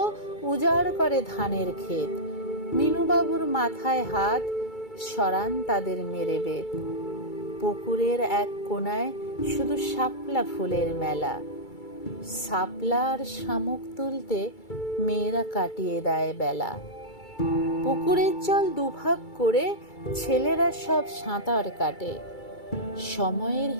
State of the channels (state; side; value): late; right; 2.3 ms